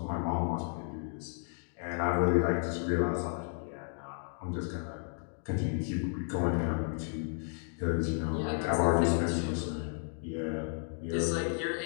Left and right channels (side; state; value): right; silent; 56 dB below the other